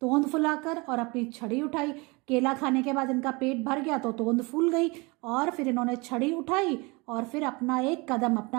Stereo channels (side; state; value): left; quieter; 26.6 dB